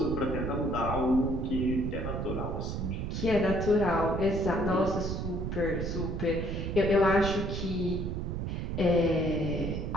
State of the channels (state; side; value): noise; right; rumble, 3 dB below the sound